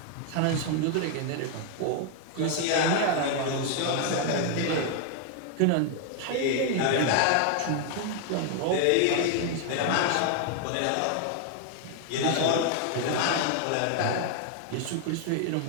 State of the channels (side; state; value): both; different; correlation 0.00